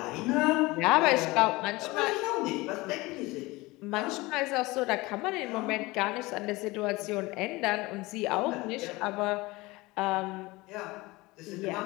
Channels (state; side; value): quieter; right; 21.8 dB